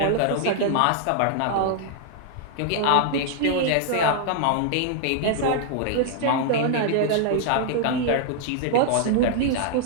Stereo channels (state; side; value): different; both; correlation -0.01